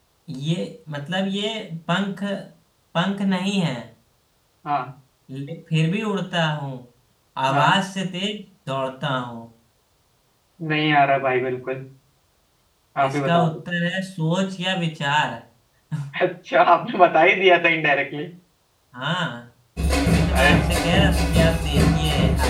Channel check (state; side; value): identical; both; correlation 1.00